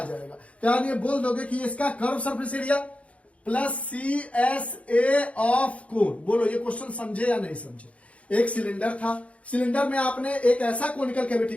जाएगा। तो यानी ये बोल दोगे कि इसका curve surface area plus CSA of cone. बोलो ये क्वेश्चन समझे या नहीं समझे? एक सिलेंडर था, सिलेंडर में आपने एक ऐसा कोनिकल कैविटी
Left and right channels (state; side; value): late; right; 0.064 ms